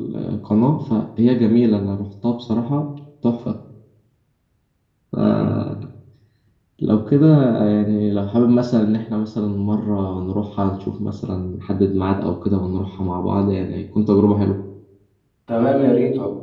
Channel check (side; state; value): both; identical; correlation 1.00